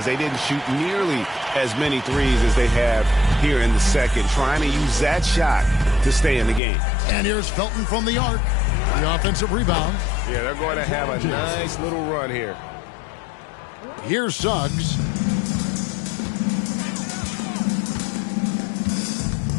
they didn't shoot nearly as many threes as they have here in the second, trying to use that shot to stay in the game. And here's Felton from the arc. The offensive rebound. Yeah, they're going to have a nice little run here. Here's Suggs.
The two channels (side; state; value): right; drops out; at 6.6 s